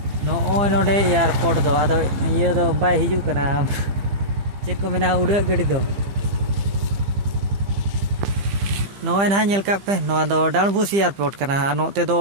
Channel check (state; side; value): late; left; 15 ms